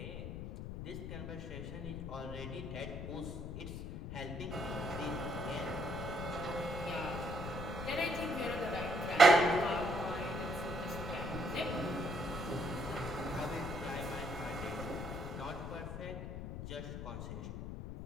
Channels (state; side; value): noise; left; rumble, 6 dB below the sound